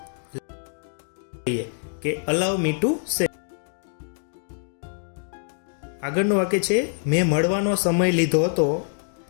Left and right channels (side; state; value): right; silent; digital silence